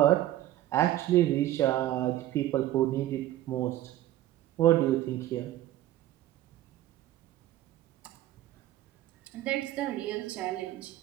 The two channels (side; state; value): left; quieter; 14.0 dB